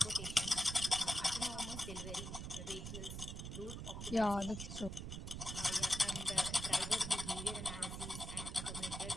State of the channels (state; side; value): noise; right; rumble, 7 dB below the sound